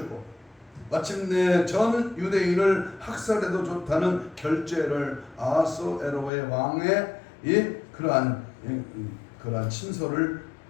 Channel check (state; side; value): drops out; right; at 6.3 s